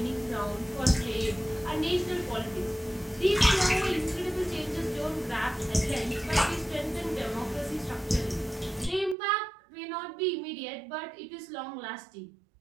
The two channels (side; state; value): left; drops out; at 9.2 s